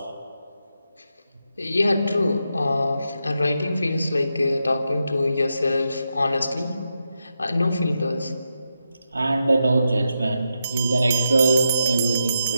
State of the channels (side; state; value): both; inverted; correlation -0.85